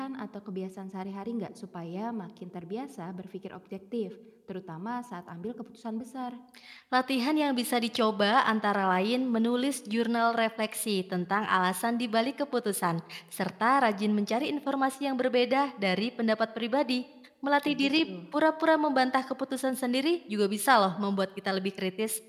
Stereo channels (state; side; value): identical; both; correlation 1.00